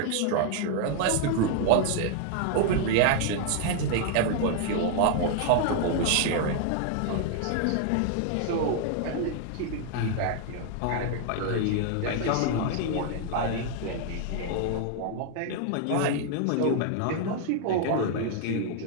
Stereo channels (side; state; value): both; different; correlation 0.00